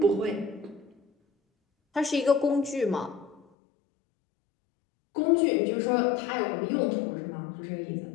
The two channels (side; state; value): right; drops out; at 3.5 s